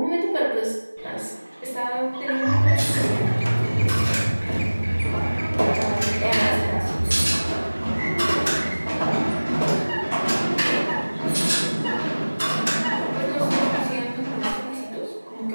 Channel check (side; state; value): both; inverted; correlation -1.00